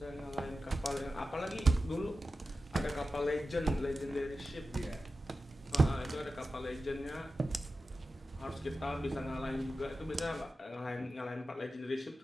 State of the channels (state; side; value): normal; both; correlation 0.93